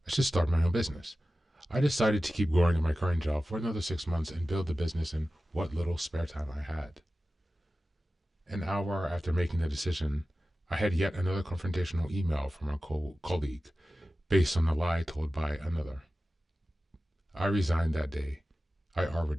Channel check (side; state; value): both; normal; correlation 0.95